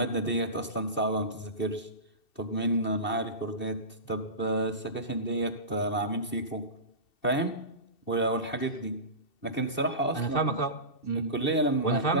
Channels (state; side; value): late; right; 2.7 ms